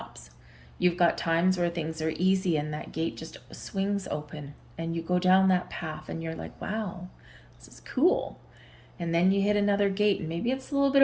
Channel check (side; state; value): both; identical; correlation 1.00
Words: You've got times where things are easy and that gate just swings open and you go down that path and you're like, wow, this is cool. And then you hit another gate and maybe it's a little bit